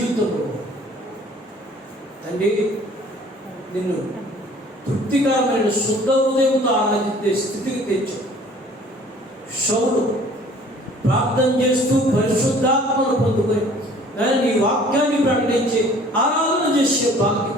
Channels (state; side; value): normal; both; correlation 0.52